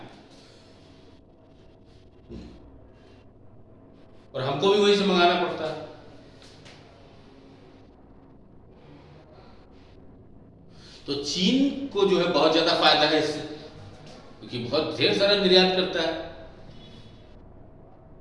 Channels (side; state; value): both; identical; correlation 1.00